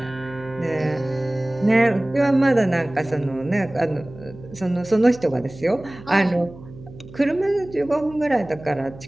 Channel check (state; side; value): noise; right; hum, 18 dB below the sound